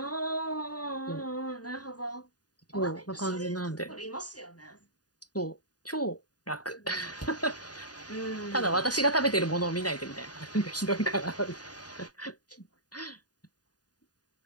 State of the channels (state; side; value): late; right; 0.68 ms